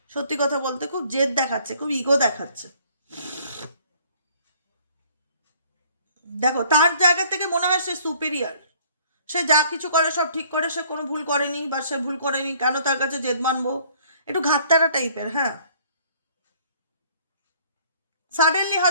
সত্যি কথা বলতে খুব জেদ দেখাচ্ছে, খুব ইগো দেখাচ্ছে। দেখো তার জায়গা থেকে মনে হয় সে সুপিরিয়ার, সে যা কিছু করে সব ঠিক করে, সে কোনো ভুল করেনি বা সে ভুল করেনি, কেন তার কাছে জেদ মানবো, একটু ঘাটতারা টাইপের। হ্যাঁ, সাডেনলি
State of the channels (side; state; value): both; inverted; correlation -0.58